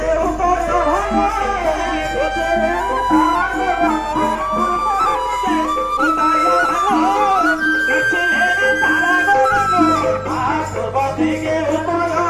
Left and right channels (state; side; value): identical; both; correlation 1.00